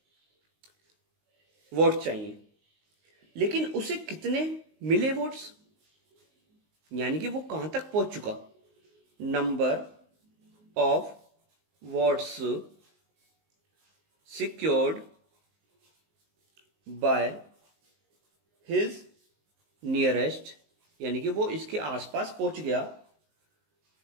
वोट चाहिए, लेकिन उसे कितने मिले वोट्स, यानी कि वो कहां तक पहुंच चुका। Number of votes secured by his nearest, यानी कि वो इसके आसपास पहुंच गया,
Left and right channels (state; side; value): late; left; 19 ms